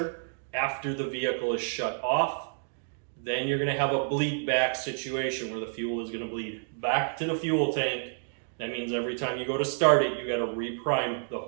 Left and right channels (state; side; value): silent; left; digital silence